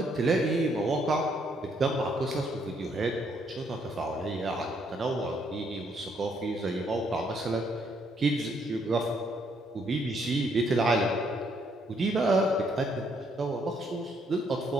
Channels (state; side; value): normal; both; correlation 0.71